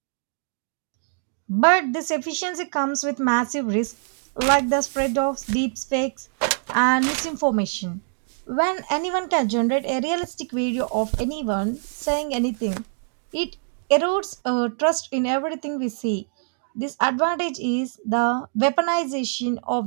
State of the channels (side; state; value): left; silent; 62 dB below the other